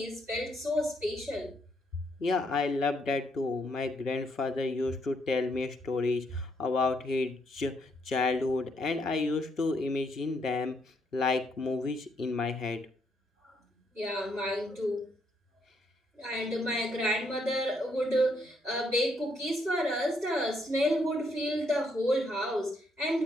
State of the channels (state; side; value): normal; both; correlation 0.74